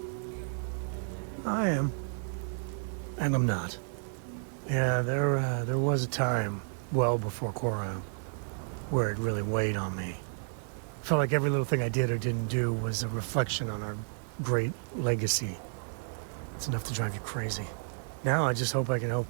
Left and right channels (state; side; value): silent; left; digital silence